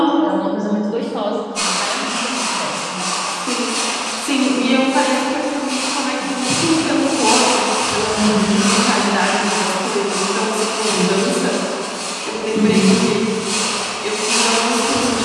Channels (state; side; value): identical; both; correlation 1.00